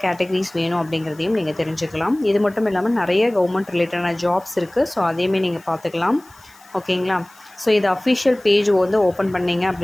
கேட்டகரிஸ் வேணும் அப்படிங்கிறதையும் நீங்கள் தெரிஞ்சுக்கலாம். இது மட்டும் இல்லாமல் நிறைய கவர்மெண்ட் ரிலேட்டடான ஜாப்ஸ் இருக்குது. ஸோ அதையுமே நீங்கள் பார்த்துக்கலாம். ஓகேங்களா? ஸோ இது அஃபிஷியல் பேஜ் வந்து ஓப்பன் பண்ணிங்க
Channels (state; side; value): noise; left; hiss, 27 dB below the sound